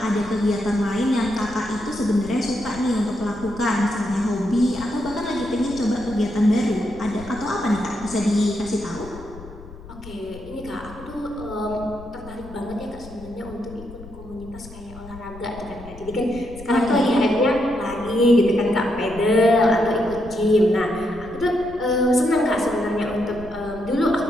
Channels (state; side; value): noise; left; rumble, 17 dB below the sound